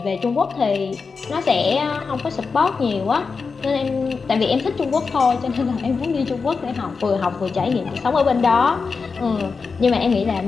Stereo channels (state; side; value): quieter; right; 4.9 dB